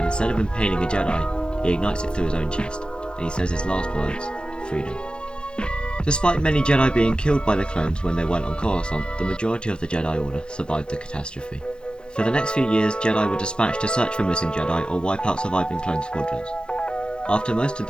instead of impaling a Jedi, he ignites it through his own chest, and he says his last words, "Freedom." Despite many Jedi being killed by the clones when they went on Coruscant, the majority of the Jedi Order survived the catastrophe. For the next few years, Jedi were dispatched to search for missing Jedi or wipe out surviving clone squadrons. After most of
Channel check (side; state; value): right; late; 0.050 ms